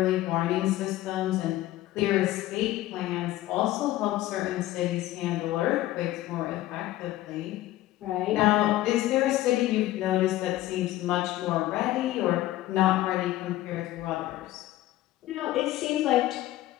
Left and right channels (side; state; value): right; quieter; 15.6 dB